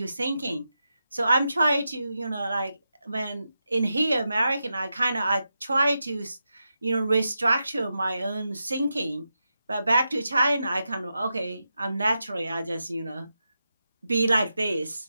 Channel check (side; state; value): both; inverted; correlation -0.88